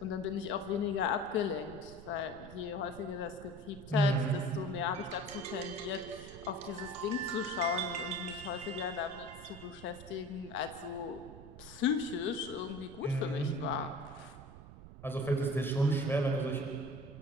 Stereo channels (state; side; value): noise; right; rumble, 15 dB below the sound